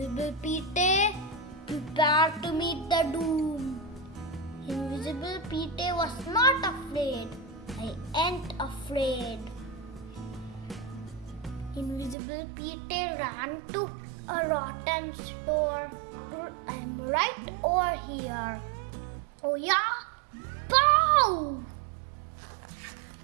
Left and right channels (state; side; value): drops out; left; at 12.2 s